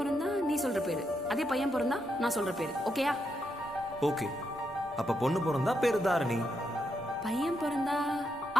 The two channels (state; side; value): noise; left; rumble, 29 dB below the sound